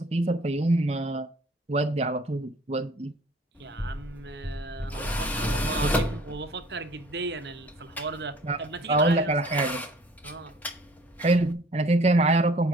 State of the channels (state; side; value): normal; both; correlation 0.53